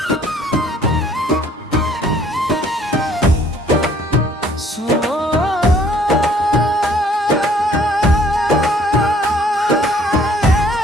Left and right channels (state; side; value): normal; both; correlation 0.59